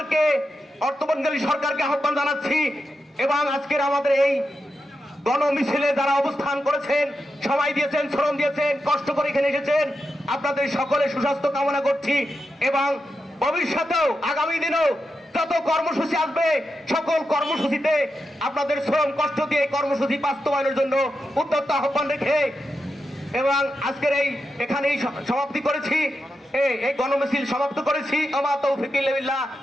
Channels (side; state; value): both; normal; correlation 0.87